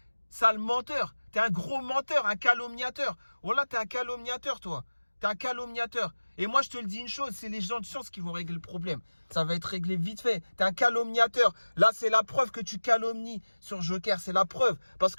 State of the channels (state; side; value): inverted; both; correlation -1.00